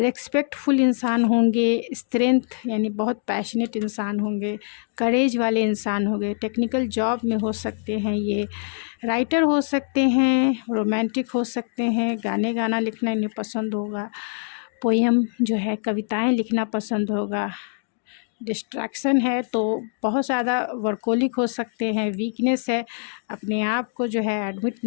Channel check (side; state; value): right; silent; digital silence